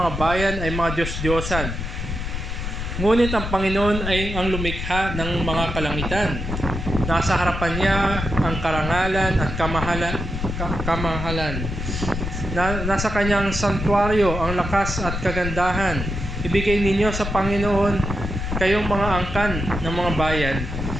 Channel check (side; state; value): left; noise; rumble, 4 dB below the sound